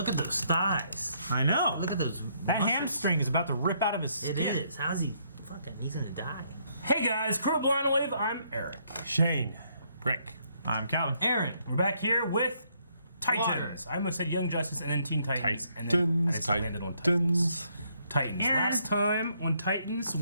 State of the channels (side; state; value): both; inverted; correlation -0.71